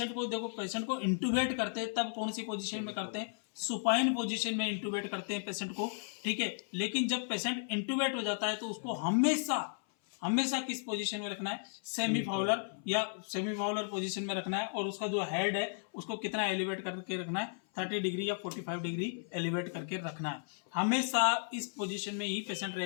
को देखो, पेशेंट को इंटूबेट करते हैं तब कौन सी पोजीशन में करते हैं, सुपाइन पोजीशन में इंटूबेट करते हैं पेशेंट को। ठीक है, लेकिन जब पेशेंट इंटूबेट हो जाता है तो उसको हमेशा किस पोजीशन में रखना है, सेमी फाउलर या सेमी फाउलर पोजीशन में रखना है, और उसका जो हेड है उसको कितना एलिवेट करके रखना है, 30 डिग्री या 45 डिग्री एलिवेट करके रखना है। हमेशा इस पोजीशन में ही पेशेंट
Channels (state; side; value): silent; right; 55 dB below the other